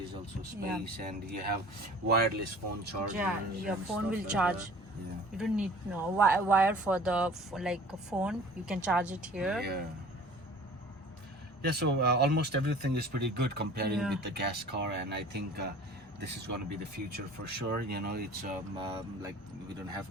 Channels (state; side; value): normal; both; correlation 0.46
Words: is also space, and you have wireless phone chargers. Yeah, your and phone stuff will like charge. that. Yeah. You don't need no wire for like a phone. You can charge it here. Yeah, so almost everything is pretty good comparing with the gas car, and I think this is going to be the future for sure. It's like, we don't